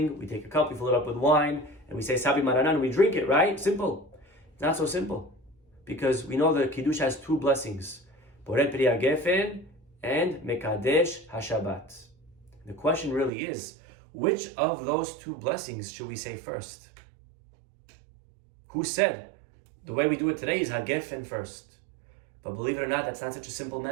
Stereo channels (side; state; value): left; drops out; at 13.3 s